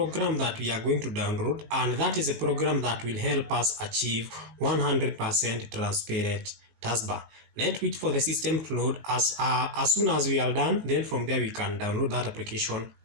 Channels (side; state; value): left; late; 18 ms